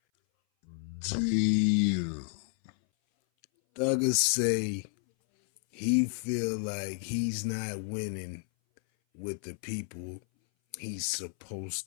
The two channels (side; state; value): right; silent; 57 dB below the other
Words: Damn. Thugger say he feel like he's not winning with the people he's supposed